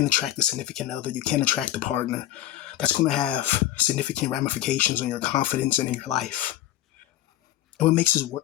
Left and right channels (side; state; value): right; quieter; 13.8 dB